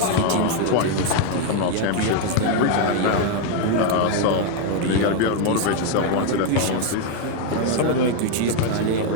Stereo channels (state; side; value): different; both; correlation 0.01